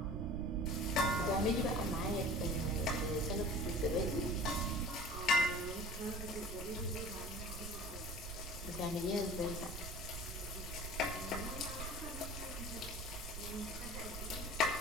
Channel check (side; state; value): right; noise; rumble, 7 dB below the sound